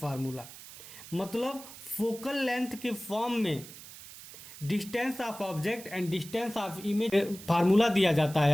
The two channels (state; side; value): noise; right; hiss, 16 dB below the sound